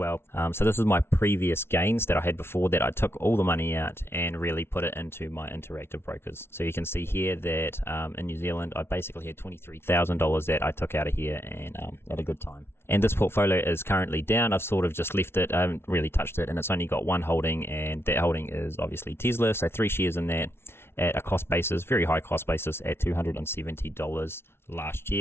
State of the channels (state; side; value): late; right; 0.12 ms